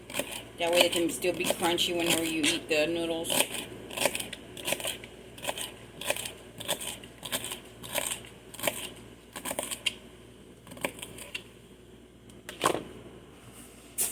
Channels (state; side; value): identical; both; correlation 1.00